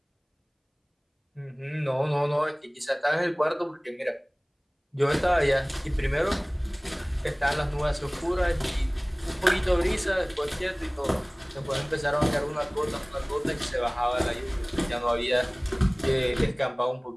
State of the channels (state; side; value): identical; both; correlation 1.00